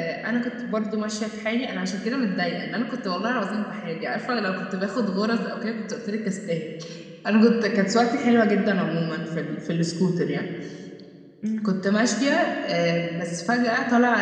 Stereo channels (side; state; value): both; identical; correlation 1.00